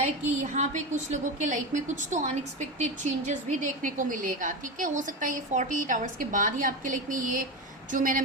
कि यहाँ पे कुछ लोगों के लाइफ में कुछ तो अनएक्सपेक्टेड चेंजेस भी देखने को मिलेगा, ठीक है। हो सकता है ये 48 आवर्स के बाद ही आपके लाइफ में ये जो मैंने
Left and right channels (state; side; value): normal; both; correlation 0.19